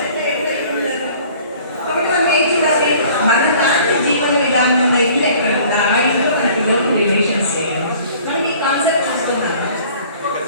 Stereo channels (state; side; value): inverted; both; correlation -0.51